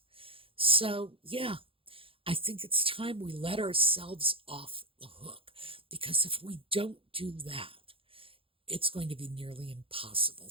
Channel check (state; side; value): late; left; 0.27 ms